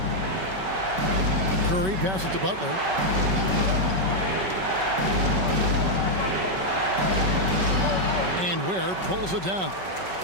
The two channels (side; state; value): left; late; 5.3 ms